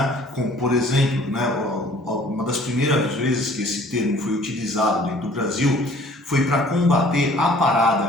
como, por exemplo, né, uma das primeiras vezes que esse termo foi utilizado dentro do Brasil foi para combater a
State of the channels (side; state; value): both; normal; correlation 0.54